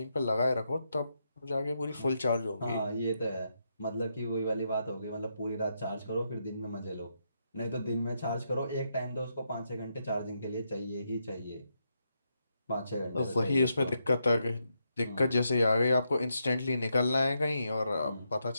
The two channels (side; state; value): both; inverted; correlation -0.82